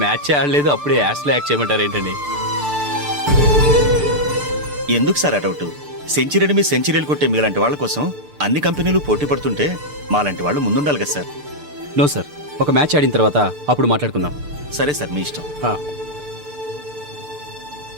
మ్యాచ్ ఆడలేదు, అప్పుడే యాడ్స్లో యాక్ట్ చేయమంటారు ఏంటండి? ఎందుకు సార్ ఆ డౌట్? సెంచరీని మీ సెంచరీలు కొట్టే మీలాంటి వాళ్ళ కోసం అన్ని కంపెనీలు పోటీ పడుతుంటే మాలాంటి వాళ్ళు ముందుండాలి కదా సార్. నో సార్, ఒక మ్యాచ్ ఆడిన తర్వాత అప్పుడు మాట్లాడుకుందాం. సరే సార్, మీ ఇష్టం.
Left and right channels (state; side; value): late; left; 6.8 ms